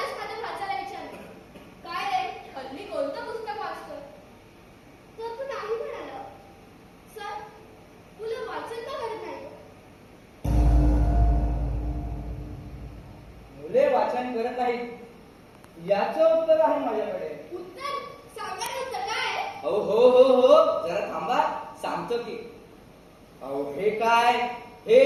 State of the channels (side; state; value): both; identical; correlation 1.00